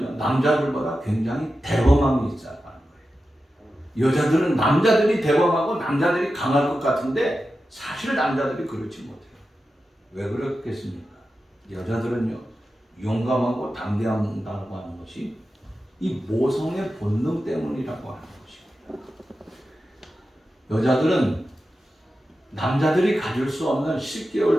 남자들보다 굉장히 대범함이 있어야 하는 거예요. 여자들은 남자들이 대범하고 남자들이 강할 것 같은데 사실 남자들이 그렇지 못해요. 왜 그렇겠습니까? 여자들은요, 용감하고 담대하다고 하는 것이 이 모성의 본능 때문이라고 하는 것입니다. 여자들은 남자들이 가질 수 없는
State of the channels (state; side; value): normal; both; correlation 0.92